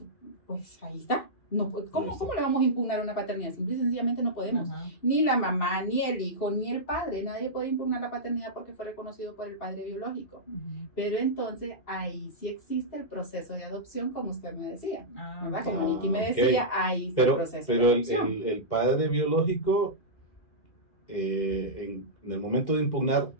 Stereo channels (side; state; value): right; late; 2.6 ms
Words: pues ahí está. No, ¿cómo le vamos a impugnar una paternidad? Simple y sencillamente no podemos. Ni la mamá, ni el hijo, ni el padre. Nadie puede impugnar la paternidad porque fue reconocido por el padre biológico. Pero entonces ahí sí existe el proceso de adopción, como usted me decía. ¿Verdad? Como Nicky me decía, ahí está el proceso de adopción. Pero el padre biológico, en el momento de impugnar,